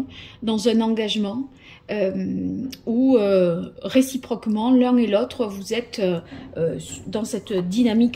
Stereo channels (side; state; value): both; identical; correlation 1.00